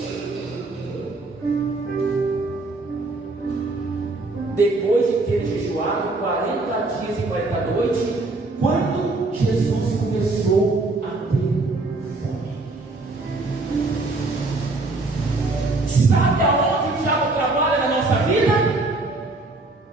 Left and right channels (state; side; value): quieter; left; 3.2 dB